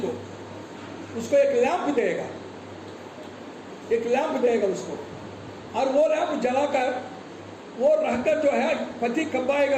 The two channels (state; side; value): identical; both; correlation 1.00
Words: उसको एक लैंप देगा उसको, और वो लैंप जलाकर वो रहकर जो है पति कब